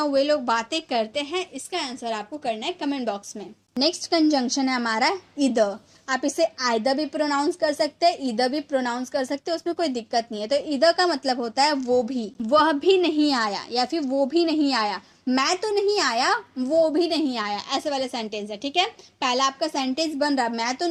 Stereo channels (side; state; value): both; identical; correlation 1.00